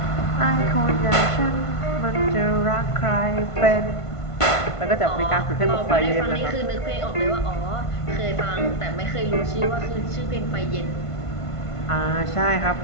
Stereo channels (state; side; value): late; right; 1.5 ms